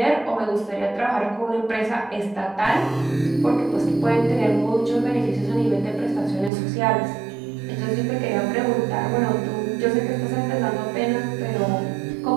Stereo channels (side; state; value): left; drops out; at 6.5 s